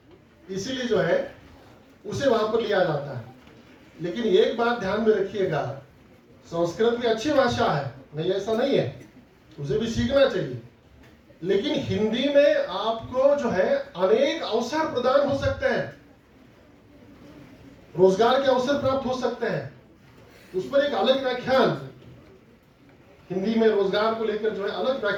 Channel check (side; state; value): both; identical; correlation 1.00